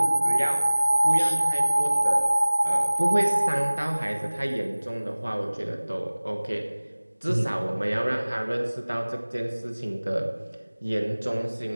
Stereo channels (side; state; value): both; inverted; correlation -1.00